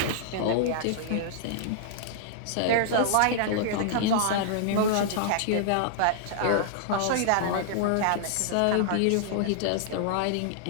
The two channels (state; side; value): different; both; correlation -0.01